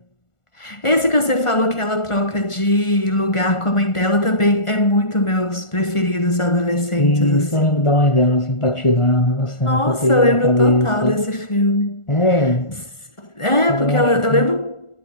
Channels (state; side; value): late; right; 1.4 ms